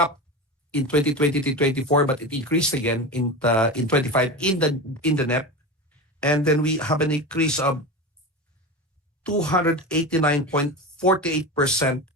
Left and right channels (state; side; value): normal; both; correlation 0.25